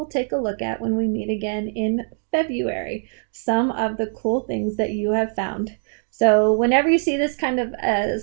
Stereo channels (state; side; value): silent; left; digital silence